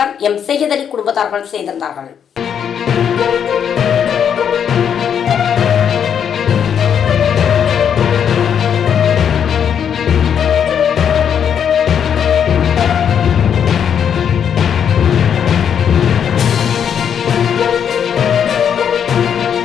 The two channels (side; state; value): right; quieter; 8.1 dB